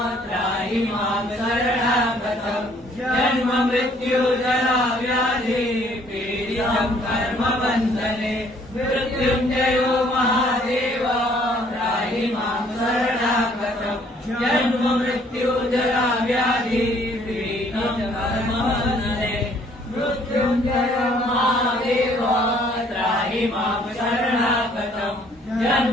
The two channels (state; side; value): normal; both; correlation 0.61